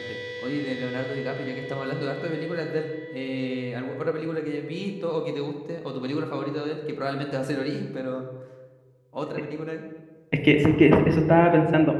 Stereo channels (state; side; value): identical; both; correlation 1.00